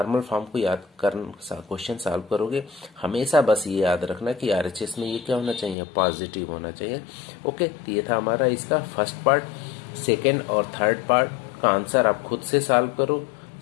फॉर्म को याद कर क्वेश्चन सॉल्व करोगे, हमेशा बस ये याद रखना कि आरएचएस में ये क्या होना चाहिए, पॉजिटिव होना चाहिए। ओके, तो ये था हमारा इसका फर्स्ट पार्ट। सेकेंड और थर्ड पार्ट का आंसर आप खुद से सॉल्व करो,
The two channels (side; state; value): right; drops out; at 5.8 s